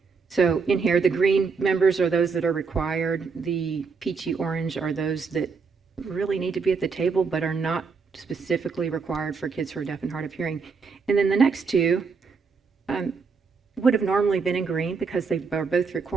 So in here, the green members are those that are required. The peachy orange are those that really need to be at the table, but are not specifically required for kids who are deaf and hard of hearing. And then the next two would have normally been in green because they are both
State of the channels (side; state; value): left; quieter; 5.1 dB